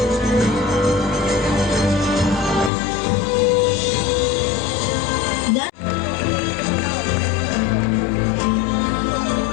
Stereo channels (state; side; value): drops out; right; at 2.7 s